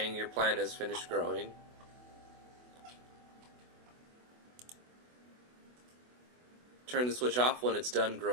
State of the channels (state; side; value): late; left; 24 ms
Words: your plant has finished growing. Turn the switch off when it's done